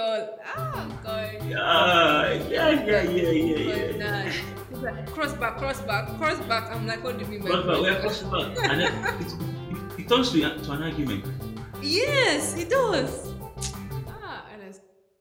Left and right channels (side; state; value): both; identical; correlation 1.00